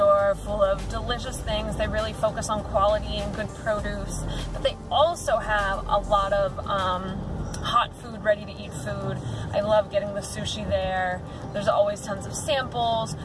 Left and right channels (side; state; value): both; identical; correlation 1.00